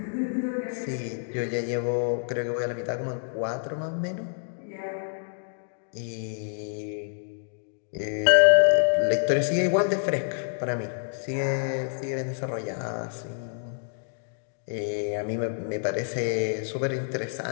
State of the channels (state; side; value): silent; right; digital silence